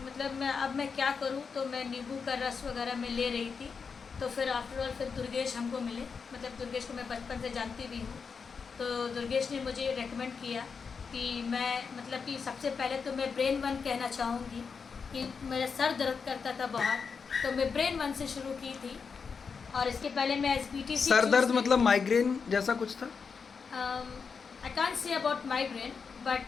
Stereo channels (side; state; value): right; quieter; 5.6 dB